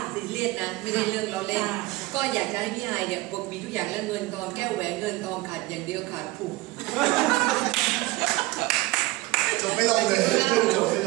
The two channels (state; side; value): quieter; left; 20.3 dB